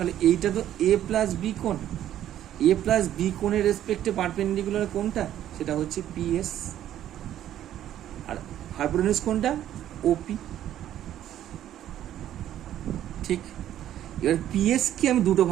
হলে এইটা তো এ প্লাস বি কোণ, এ প্লাস বি কোণের রেসপেক্টে পারপেন্ডিকুলার কোনটা, সেটা হচ্ছে পিএস, আর হাইপোটেনিউজ কোনটা, ওপি। ঠিক, এবার পিএস কে আমি দুটো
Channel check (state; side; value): quieter; left; 11.7 dB